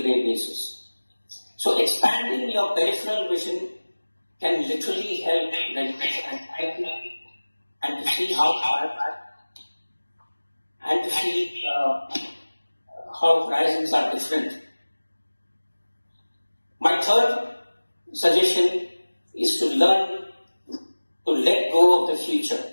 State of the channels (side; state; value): both; inverted; correlation -1.00